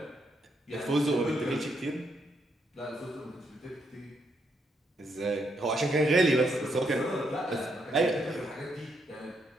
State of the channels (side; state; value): both; normal; correlation 0.77